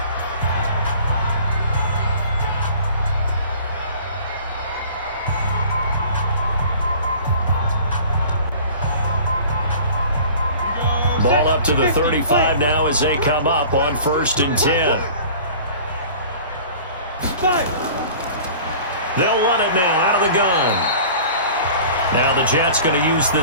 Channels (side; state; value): both; inverted; correlation -0.45